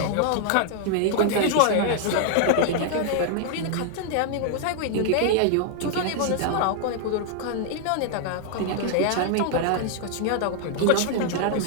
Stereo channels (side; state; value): both; different; correlation 0.00